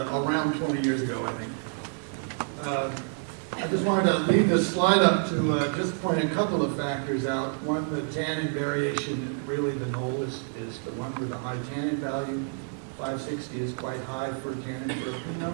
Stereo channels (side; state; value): left; silent; 56 dB below the other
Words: around 20 years ago, I think. I just wanted to leave this slide up to just point a couple of factors out. One, the tannin variation, really the knoll is the one with the high tannin value. 560 is quite high for tannin for a